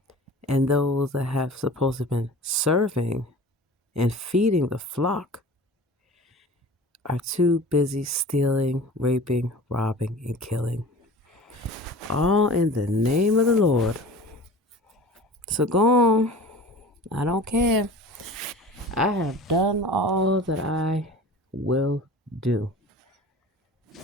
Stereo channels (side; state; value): both; normal; correlation 0.39